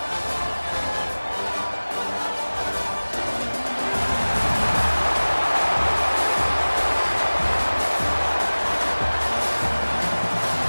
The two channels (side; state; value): both; inverted; correlation -1.00